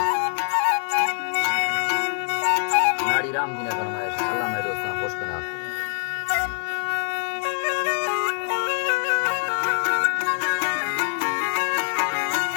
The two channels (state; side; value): silent; right; digital silence